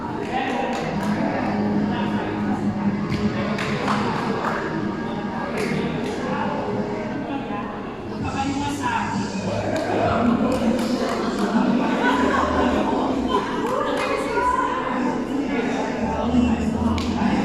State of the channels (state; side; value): identical; both; correlation 1.00